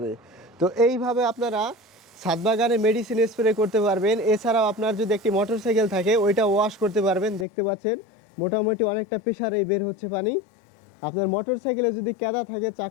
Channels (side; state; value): right; drops out; at 7.5 s